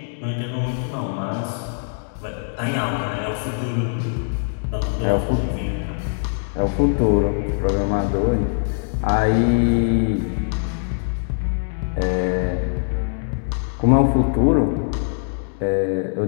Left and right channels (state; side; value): silent; right; digital silence